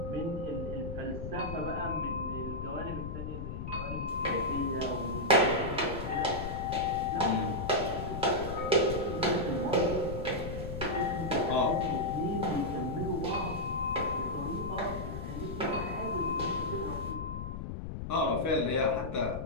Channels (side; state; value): left; noise; rumble, 6 dB below the sound